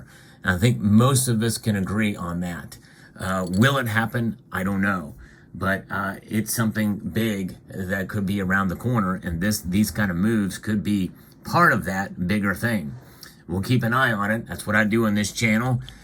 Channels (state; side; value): identical; both; correlation 1.00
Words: And I think most of us can agree on that. Will it happen? I don't know. But it's something big that could be around the corner, and these kind of moves could be part of that bigger thing. We'll keep an eye on it. That's what I do on this channel,